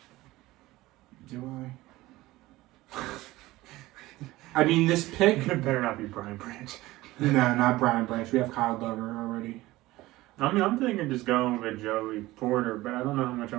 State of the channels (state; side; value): quieter; left; 18.3 dB